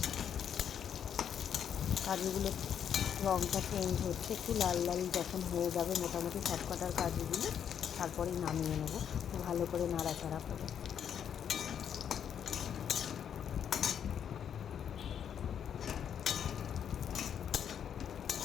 কাজুগুলো রঙটা চেঞ্জ হচ্ছে, একটু লাল লাল যখন হয়ে যাবে মোটামুটি সবকটার কাজুগুলো, তারপরেই নামিয়ে নেব ভালো করে নাড়াচাড়া করে।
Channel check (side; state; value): right; quieter; 8.6 dB